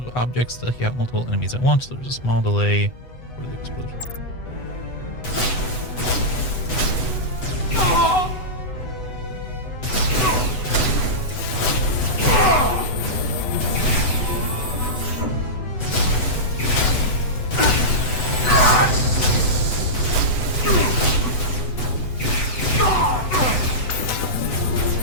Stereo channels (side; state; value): right; late; 8.0 ms